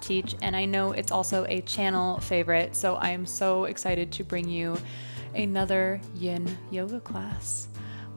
and I know it's also a channel favorite, so I am so excited to bring you another yin yoga class.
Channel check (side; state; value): both; inverted; correlation -1.00